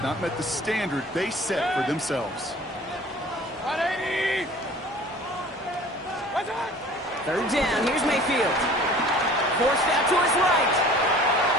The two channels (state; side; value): normal; both; correlation 0.46